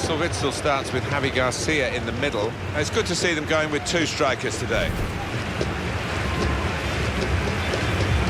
Witsel starts with Javi Garcia in the middle. It's good to see them going with two strikers today.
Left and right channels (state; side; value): identical; both; correlation 1.00